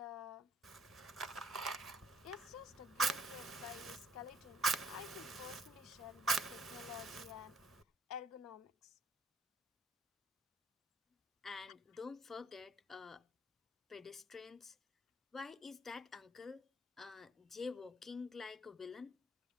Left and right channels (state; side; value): normal; both; correlation 0.63